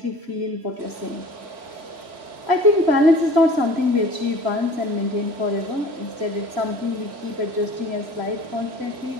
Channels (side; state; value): left; late; 3.0 ms